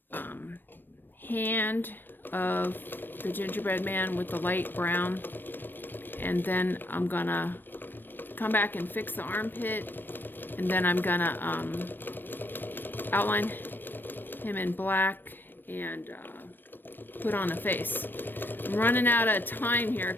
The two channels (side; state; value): right; late; 0.094 ms